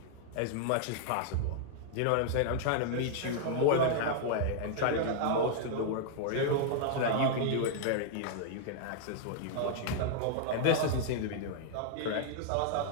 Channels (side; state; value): both; different; correlation -0.01